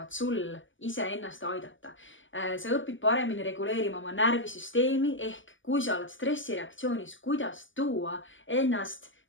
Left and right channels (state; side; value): late; right; 0.56 ms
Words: sul iseennast aidata. Sa õpid paremini reguleerima oma närvisüsteemi ehk kui sa oled stressireaktsioonis, kuidas tuua ennast